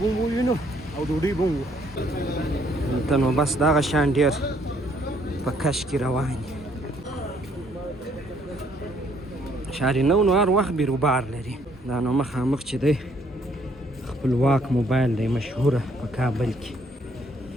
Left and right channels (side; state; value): both; normal; correlation 0.66